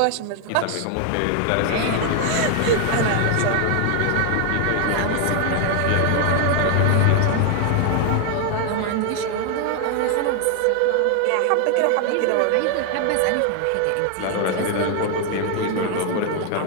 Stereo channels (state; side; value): different; both; correlation 0.01